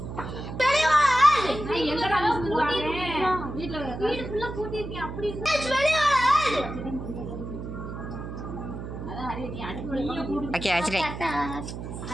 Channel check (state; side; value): noise; right; hum, 8 dB below the sound